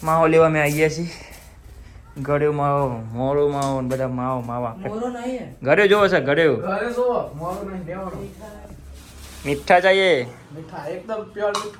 માવો લેવા મેં આવીએ છીએ. ગળ્યો માવો, મોરો માવો ને બધા માવો માવા. મોરો નહીં ગળ્યો જોવો છે ગળ્યો. ઘરે જો મોરો નહીં દેવાનો મીઠા ચાહીએ. મીઠા એકદમ પ્યોર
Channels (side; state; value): both; identical; correlation 1.00